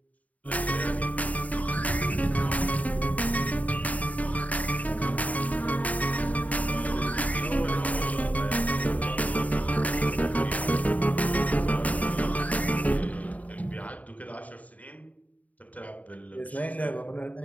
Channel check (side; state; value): right; late; 0.071 ms